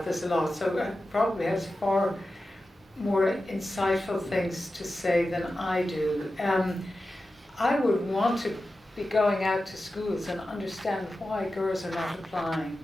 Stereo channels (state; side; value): normal; both; correlation 0.93